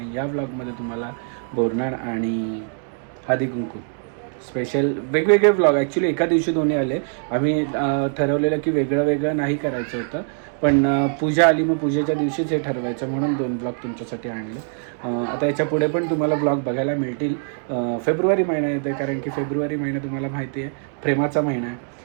या ब्लॉगमध्ये तुम्हाला बोरनाळ आणि हळदी कुंकू स्पेशल वेगवेगळे ब्लॉग ॲक्च्युली एका दिवशी दोन्ही आले. आम्ही ठरवलेलं की वेगळं नाही करायचं होतं, पण पूजा आली मग पूजेच्या दिवशीच हे ठरवायचं म्हणून 2 ब्लॉग तुमच्यासाठी आणले. आता याच्या पुढे पण तुम्हाला ब्लॉग बघायला मिळतील. फेब्रुवारी महिना येतो कारण की फेब्रुवारी महिना तुम्हाला माहिती आहे प्रेमाचा महिना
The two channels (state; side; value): silent; left; 64 dB below the other